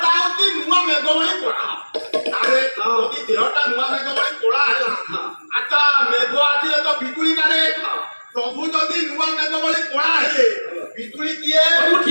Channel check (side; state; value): both; inverted; correlation -1.00